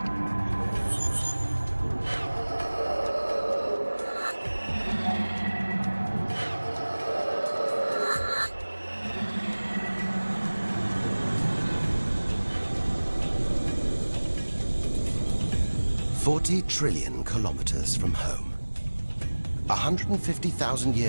$40 trillion kilometers from home.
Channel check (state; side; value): inverted; both; correlation -1.00